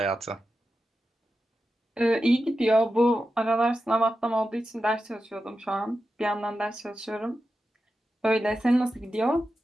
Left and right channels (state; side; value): normal; both; correlation 0.91